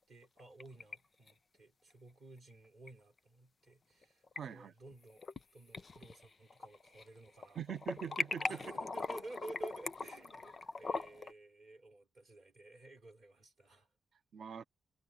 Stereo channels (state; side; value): normal; both; correlation 0.85